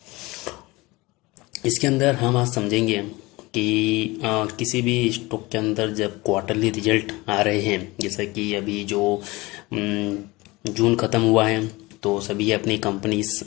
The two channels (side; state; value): right; quieter; 22.1 dB